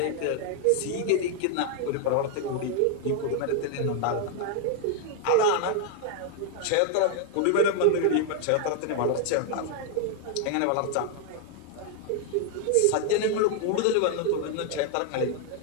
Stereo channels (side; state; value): both; different; correlation 0.01